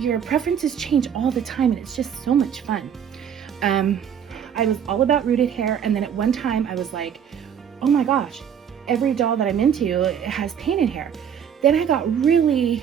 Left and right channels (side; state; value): left; quieter; 8.3 dB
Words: preferences change all the time, and it's just so much fun. I was all about rooted hair, and then at one time I was like, oh my gosh, every doll that I'm into has painted hair. Then I got really